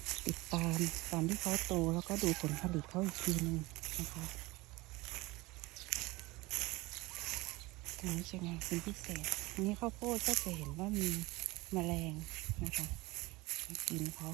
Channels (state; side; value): quieter; left; 21.6 dB